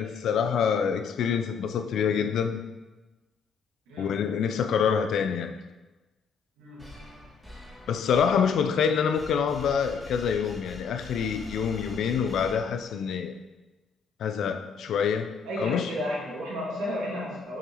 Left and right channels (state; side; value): quieter; right; 6.2 dB